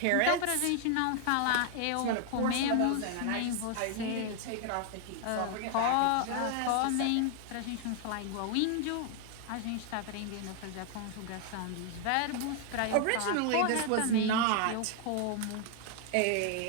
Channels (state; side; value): different; both; correlation 0.00